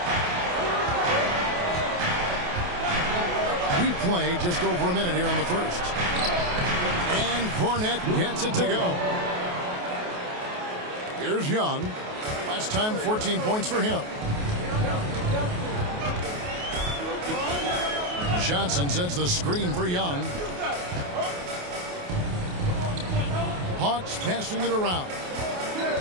We played just over a minute here in the first. And Cornette gets it to go. Here's Young. Last time, 14 points for him. Johnson sets the screen for Young. Hawks passing it around.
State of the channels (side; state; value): left; late; 28 ms